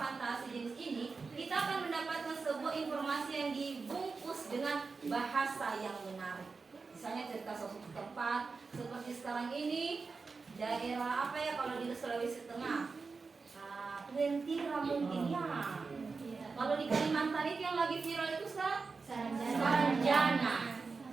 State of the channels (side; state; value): left; quieter; 4.5 dB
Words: fantasi jenis ini, kita akan mendapatkan sebuah informasi yang dibungkus dengan bahasa yang menarik. Misalnya cerita suatu tempat seperti sekarang ini, daerah apa ya kalau di Sulawesi Tengah, Twentira mungkin ya. Kalau di Kalimantan itu yang lagi viral itu Saranjana.